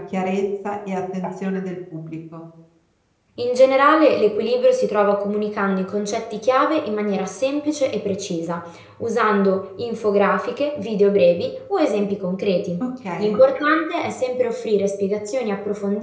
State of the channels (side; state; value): both; identical; correlation 1.00